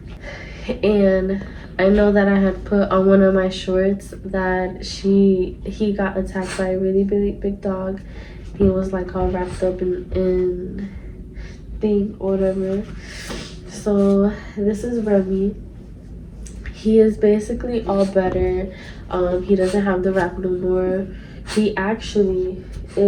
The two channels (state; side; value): identical; both; correlation 1.00